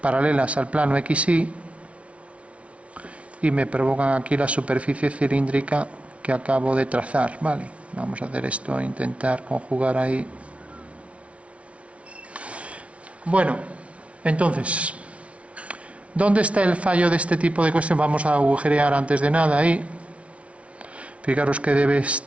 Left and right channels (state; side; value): late; left; 0.063 ms